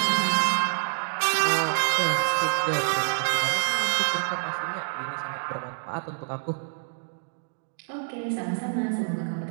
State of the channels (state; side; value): silent; left; digital silence